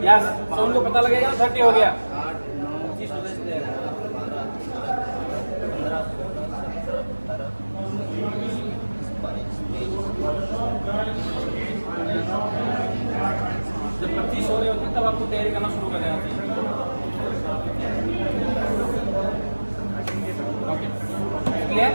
यस, साउंड को पता लगेगा 30 हो गया. जब 25 हो रहे होते तब आपको तैयारी करना शुरू कर देना चाहिए. Okay clear.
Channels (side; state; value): both; inverted; correlation -1.00